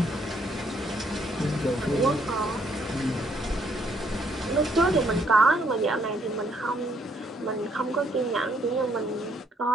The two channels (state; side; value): normal; both; correlation 0.69